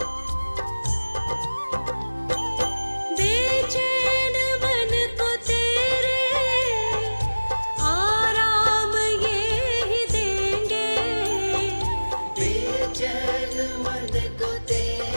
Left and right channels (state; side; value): inverted; both; correlation -1.00